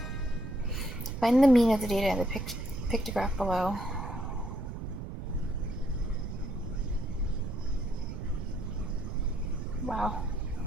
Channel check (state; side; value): noise; right; rumble, 7 dB below the sound